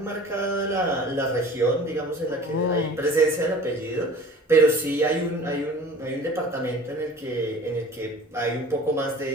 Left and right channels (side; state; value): both; normal; correlation 0.44